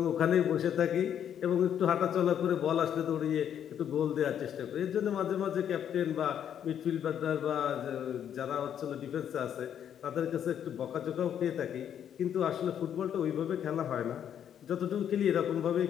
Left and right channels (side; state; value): right; quieter; 9.3 dB